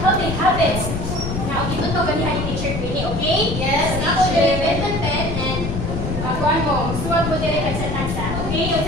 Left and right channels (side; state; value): left; noise; rumble, 4 dB below the sound